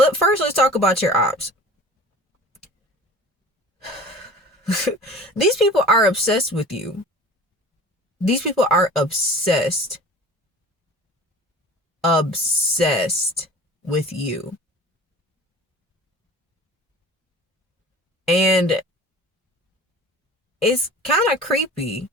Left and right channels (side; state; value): both; normal; correlation 0.42